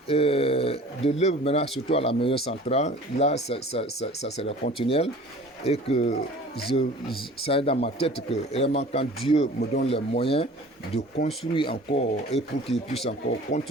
de l'œuvre maintenant, surtout à la maison centrale. Là, ça sera continuel. Et que ça est dans ma tête que vraiment quand Dieu me donne les moyens de construire encore et pour qu'il puisse encore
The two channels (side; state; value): both; normal; correlation 0.45